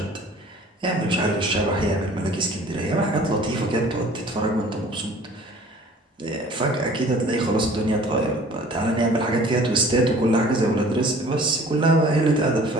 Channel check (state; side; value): normal; both; correlation 0.49